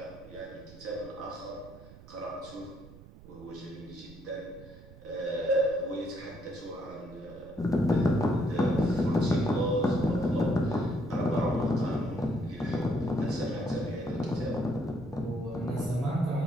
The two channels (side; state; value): right; noise; rumble, 19 dB below the sound